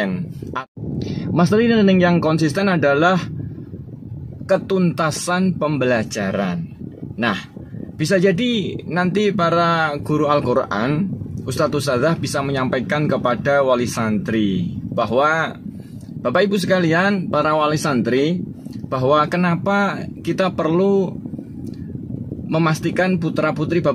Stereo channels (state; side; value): identical; both; correlation 1.00